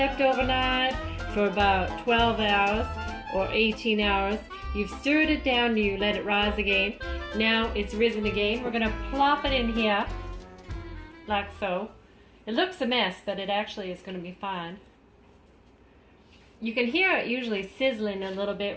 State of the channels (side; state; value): both; identical; correlation 1.00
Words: overnight for about 12 hours or 18 hours. You've stirred it down, you let it rise again. Now it's risen again. We're gonna plop it in here, like so. It looks a mess, but it actually is gonna be fine. You can hear it usually sizzling a little